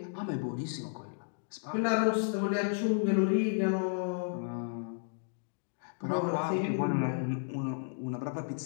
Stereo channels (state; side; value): silent; right; digital silence